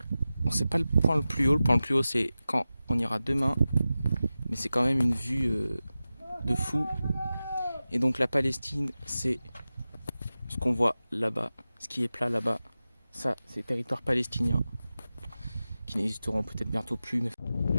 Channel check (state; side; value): inverted; both; correlation -0.94